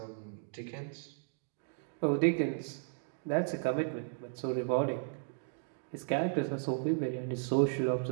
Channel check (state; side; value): silent; left; digital silence